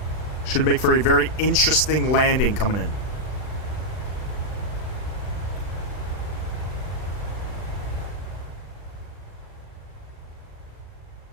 Should make for a very interesting landing coming in.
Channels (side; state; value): right; late; 39 ms